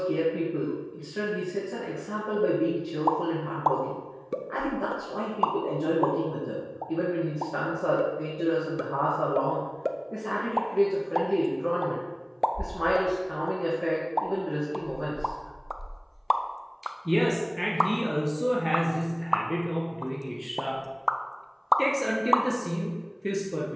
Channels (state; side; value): identical; both; correlation 1.00